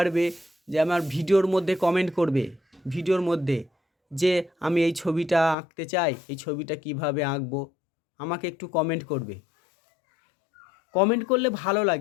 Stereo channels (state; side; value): drops out; right; at 5.6 s